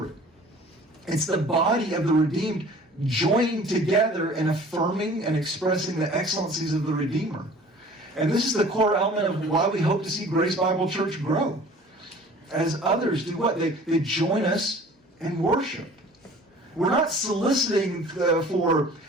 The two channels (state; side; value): normal; both; correlation 0.47